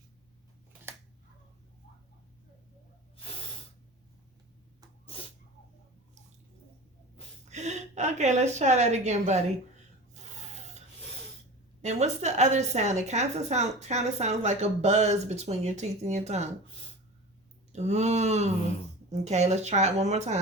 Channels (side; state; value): both; normal; correlation 0.34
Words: Okay, let's try that again, buddy. And what's the other sound? It kind of sounds like a buzz between your teeth and your tongue. Ooh. Okay, let's try it one more